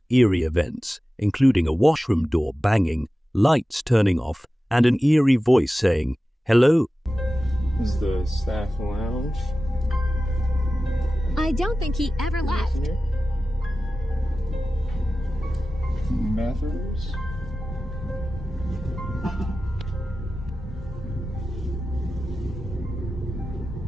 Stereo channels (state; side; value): normal; both; correlation 0.95